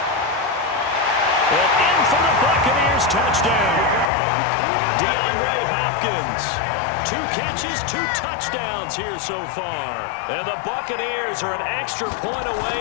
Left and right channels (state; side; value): drops out; right; at 4.1 s